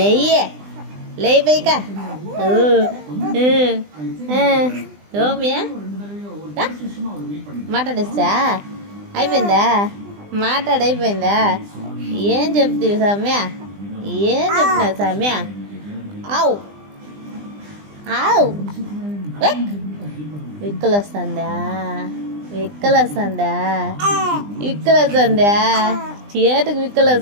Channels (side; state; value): left; late; 20 ms